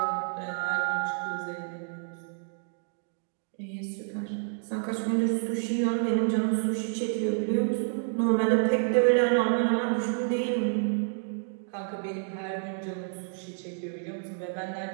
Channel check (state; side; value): silent; left; 58 dB below the other